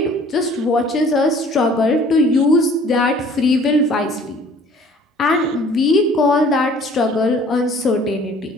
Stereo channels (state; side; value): normal; both; correlation 0.53